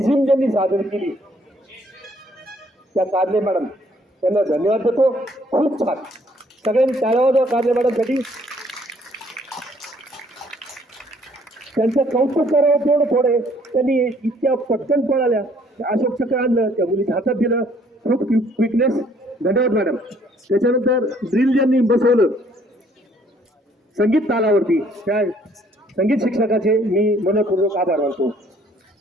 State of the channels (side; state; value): both; normal; correlation 0.62